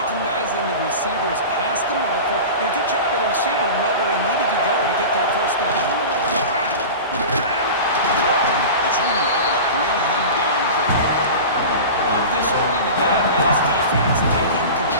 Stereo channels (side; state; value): both; inverted; correlation -0.31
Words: the receivers past the marker, and a good job of the receiver to know where he needed to go to get that first down. The team able to bring him down quickly. Love this early in the game by this defense, taking